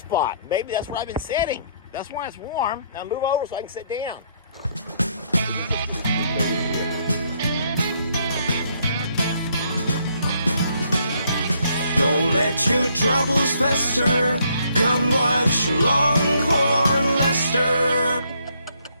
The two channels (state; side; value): inverted; both; correlation -0.70